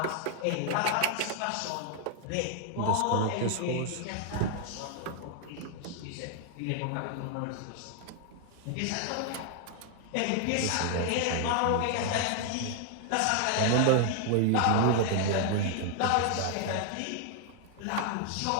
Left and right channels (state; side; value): different; both; correlation 0.00